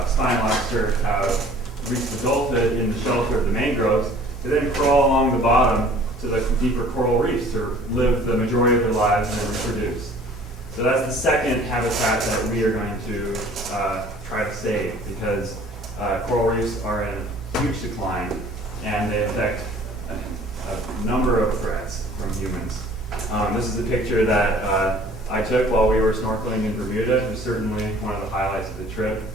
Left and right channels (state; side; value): normal; both; correlation 0.51